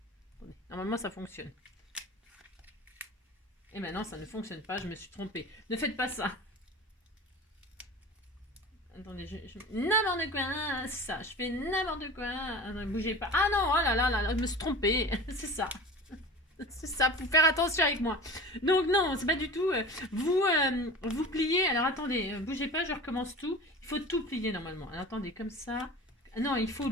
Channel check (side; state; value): both; normal; correlation 0.35